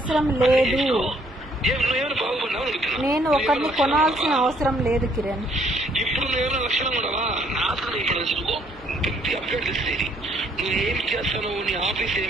లేదు. నేను ఒకరిని కొనాల్సిన అవసరం లేదు కిరణ్. ఇప్పుడు నువ్వేమైనా లక్షణం ఉండవా? నాశనం ఇప్పుడు అప్డేట్ ఇస్తుంది. నువ్వు ఏం చేస్తావు? నీ ఆఫీస్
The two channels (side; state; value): both; normal; correlation 0.65